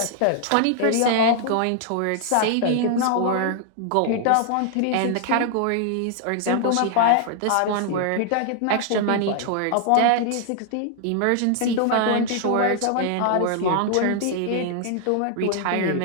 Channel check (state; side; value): different; both; correlation 0.00